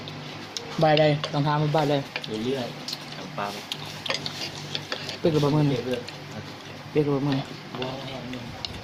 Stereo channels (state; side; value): identical; both; correlation 1.00